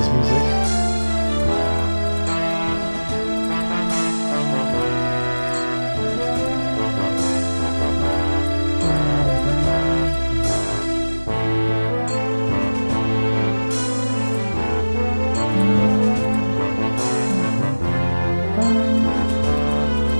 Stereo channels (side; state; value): both; inverted; correlation -1.00